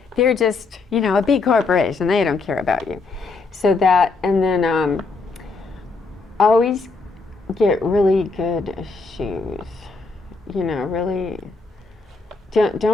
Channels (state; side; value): quieter; right; 3.9 dB